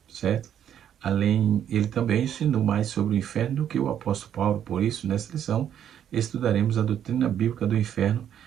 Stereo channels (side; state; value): left; quieter; 9.7 dB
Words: certo? Ele também ensinou mais sobre o inferno do que o apóstolo Paulo. Por isso, nessa lição, estudaremos a doutrina bíblica do inferno